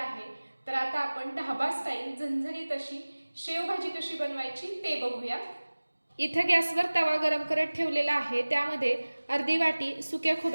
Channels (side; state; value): both; inverted; correlation -1.00